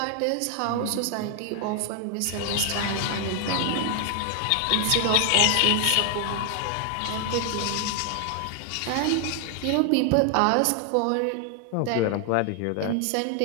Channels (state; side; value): different; both; correlation 0.00